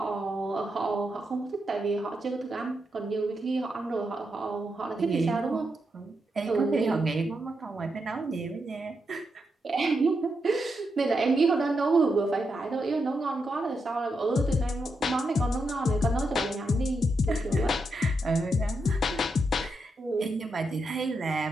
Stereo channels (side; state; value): both; normal; correlation 0.84